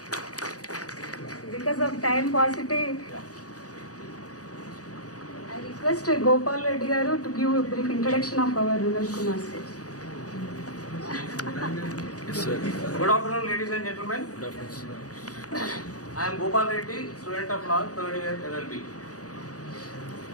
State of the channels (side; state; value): right; late; 0.67 ms